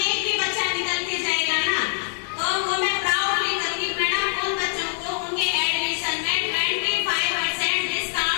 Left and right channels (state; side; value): silent; right; digital silence